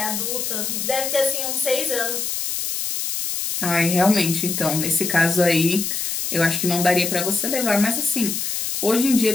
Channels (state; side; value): noise; left; hiss, 2 dB below the sound